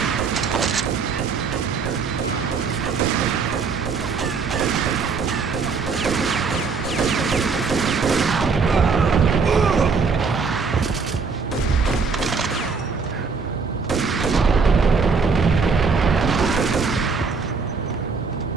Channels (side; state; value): left; quieter; 5.0 dB